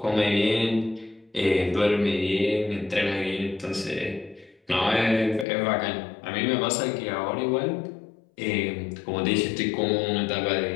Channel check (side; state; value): right; drops out; at 5.5 s